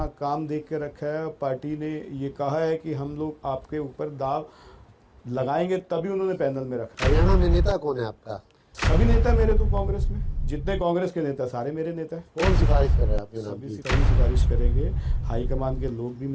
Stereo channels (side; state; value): both; identical; correlation 1.00